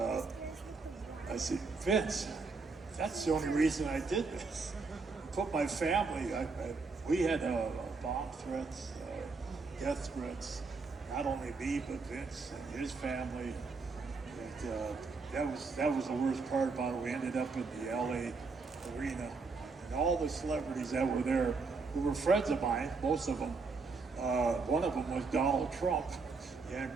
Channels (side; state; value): left; quieter; 4.3 dB